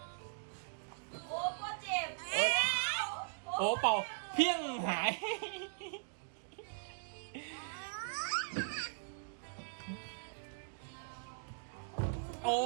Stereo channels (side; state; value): left; silent; digital silence